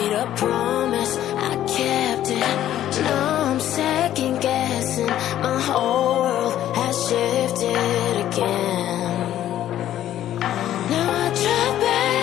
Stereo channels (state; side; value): quieter; right; 12.1 dB